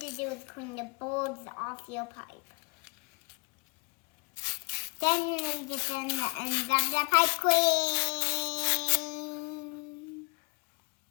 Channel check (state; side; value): quieter; right; 30.4 dB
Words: to do is clean the boards off your pipe. Then you need to sand the ends of the pipe clean.